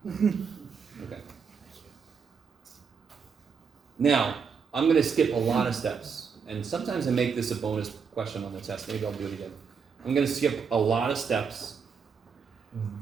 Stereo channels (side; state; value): left; quieter; 6.0 dB